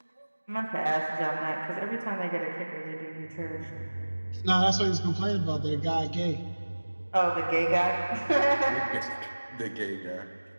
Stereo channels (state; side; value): inverted; both; correlation -1.00